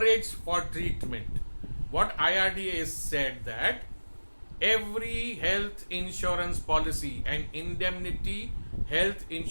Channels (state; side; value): inverted; both; correlation -1.00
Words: for treatment. What IRDA has said that every health insurance policy and indemnity health